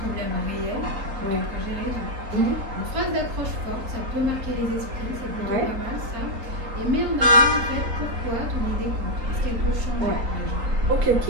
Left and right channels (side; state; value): left; late; 3.8 ms